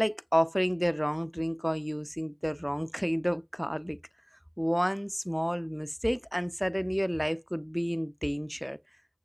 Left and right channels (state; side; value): identical; both; correlation 1.00